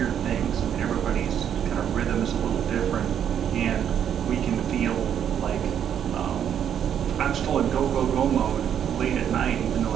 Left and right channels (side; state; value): left; quieter; 9.1 dB